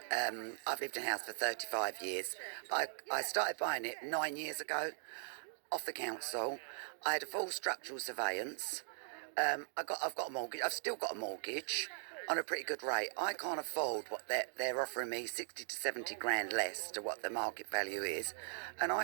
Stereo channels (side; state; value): left; silent; digital silence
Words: I've lived in a house for 35 years. I started buying it 9 years ago off the council. I had a full structural surveillance. I've got a mortgage. I've still got a mortgage on a pretty good rate. I can't afford what they're offering me, 60 to 70 grand less to what the market value is, and